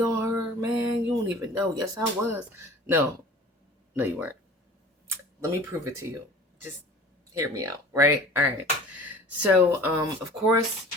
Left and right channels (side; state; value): both; normal; correlation 0.43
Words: on her, man. You don't even know. Yes, I was. No, no, you weren't. Let me prove it to you. Just hear me out, right? All right. So, of course,